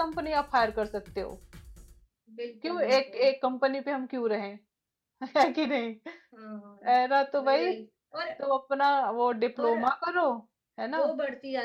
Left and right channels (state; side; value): identical; both; correlation 1.00